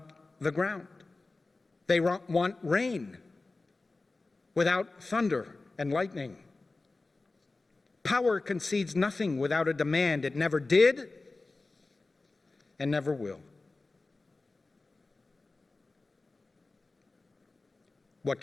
the ground. They want rain without thunder and lightning. Power concedes nothing without a demand. It never did and never will. What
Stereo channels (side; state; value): right; quieter; 3.4 dB